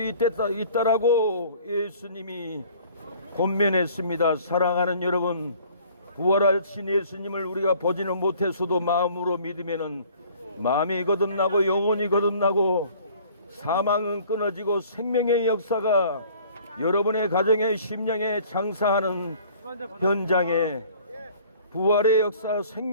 있다라고 예수님이 권면했습니다. 사랑하는 여러분, 부활하신 예수님을 우리가 보지는 못했어도 마음으로 믿으면은 마음이 거듭나고 영혼이 거듭나고 사망은 끊어지고 생명의 역사가 여러분의 가정에, 심령에 장사하는 현장에 부활의 역사,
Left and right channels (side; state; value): both; inverted; correlation -0.53